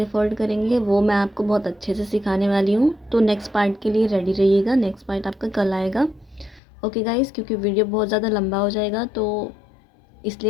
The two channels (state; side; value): drops out; right; at 6.6 s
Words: फ़ोल्ड करेंगे वो मैं आपको बहुत अच्छे से सिखाने वाली हूँ। तो नेक्स्ट पार्ट के लिए रेडी रहिएगा। नेक्स्ट पार्ट आपका कल आएगा। ओके गाइस, क्योंकि वीडियो बहुत ज़्यादा लंबा हो जाएगा तो